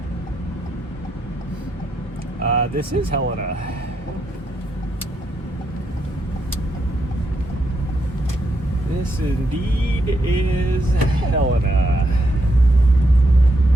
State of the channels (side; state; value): both; normal; correlation 0.79